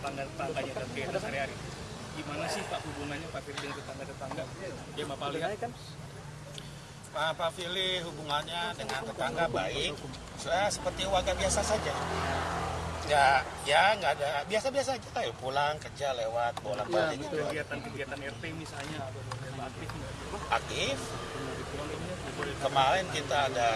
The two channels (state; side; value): identical; both; correlation 1.00